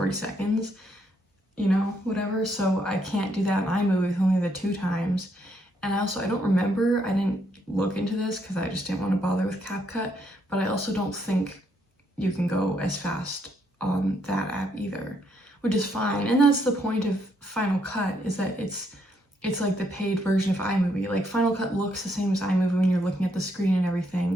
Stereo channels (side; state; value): both; normal; correlation 0.74